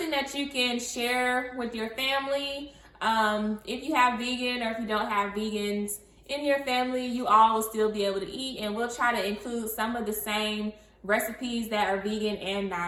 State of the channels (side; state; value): both; identical; correlation 1.00